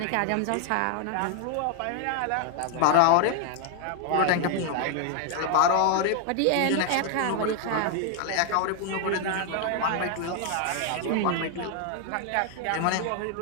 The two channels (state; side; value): different; both; correlation 0.00